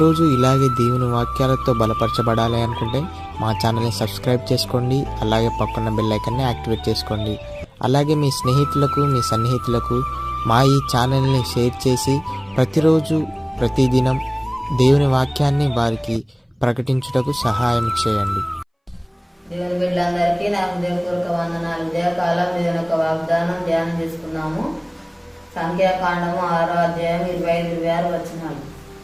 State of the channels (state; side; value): identical; both; correlation 1.00